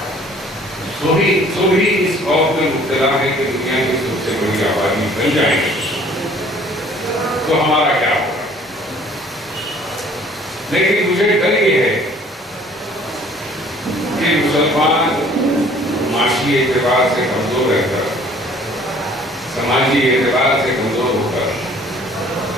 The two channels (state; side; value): normal; both; correlation 0.55